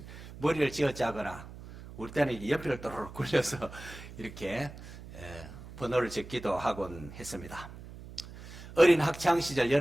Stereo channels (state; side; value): noise; right; hum, 15 dB below the sound